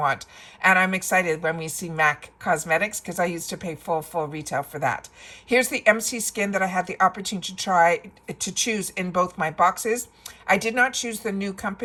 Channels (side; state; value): both; identical; correlation 1.00